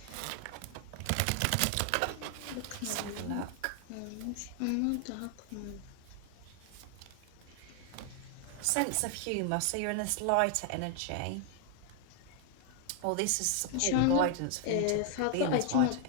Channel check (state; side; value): different; both; correlation 0.00